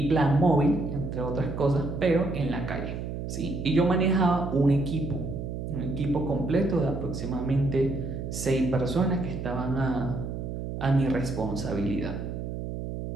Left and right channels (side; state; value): right; noise; hum, 6 dB below the sound